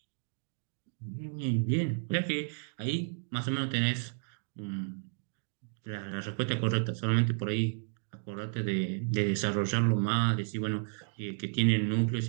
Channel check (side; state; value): left; silent; digital silence